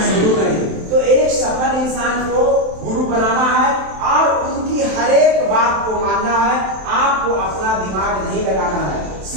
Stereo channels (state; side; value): late; left; 27 ms